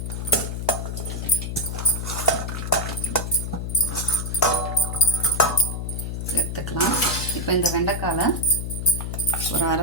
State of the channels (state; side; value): noise; left; hum, 4 dB below the sound